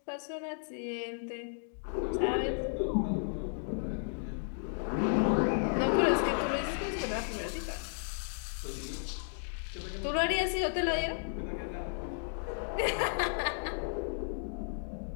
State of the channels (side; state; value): right; silent; digital silence